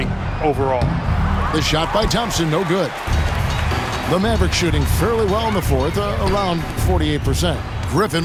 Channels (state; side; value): identical; both; correlation 1.00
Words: overall. The shot by Thompson, no good. The Mavericks shooting fairly well in the fourth, around 48%.